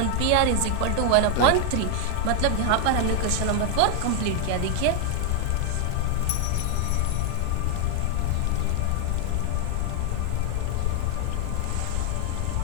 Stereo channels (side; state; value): both; different; correlation 0.00